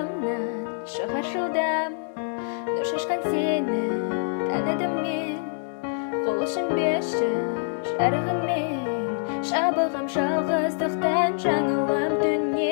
шығар жылдам, нұр шашқан сені таныдым мен. Қол ұшын берші жарығыңмен, жабығым жалғыздықтан жаңылам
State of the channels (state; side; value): silent; right; digital silence